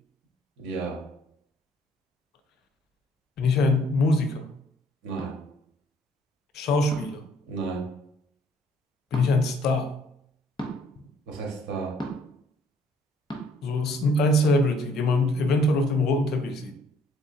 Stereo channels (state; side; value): normal; both; correlation 0.62